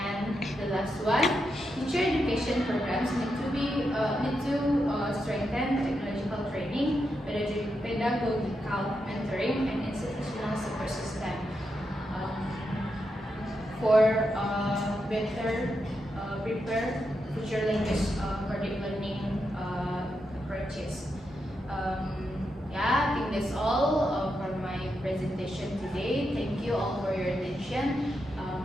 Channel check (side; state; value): both; normal; correlation 0.85